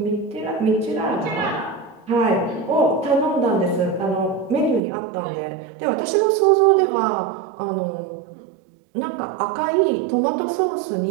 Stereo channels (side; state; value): left; drops out; at 4.8 s